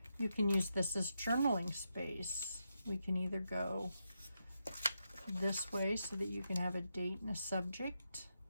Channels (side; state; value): both; inverted; correlation -0.84